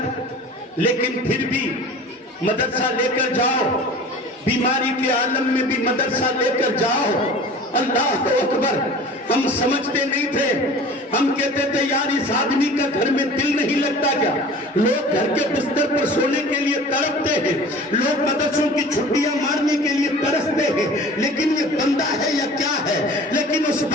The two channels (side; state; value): both; normal; correlation 0.41